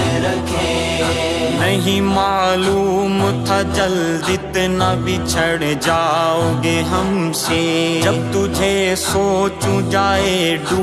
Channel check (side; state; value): both; identical; correlation 1.00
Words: رکھے۔ نہیں معلوم تھا جلد اتنا بچھڑ جاؤ گے ہم سے، جب تجھے سوچوں جائے